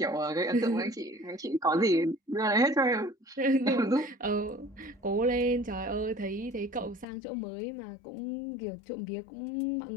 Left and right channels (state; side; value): drops out; right; at 7.1 s